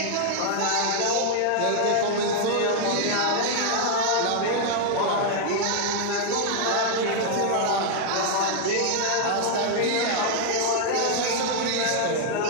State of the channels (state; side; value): different; both; correlation 0.00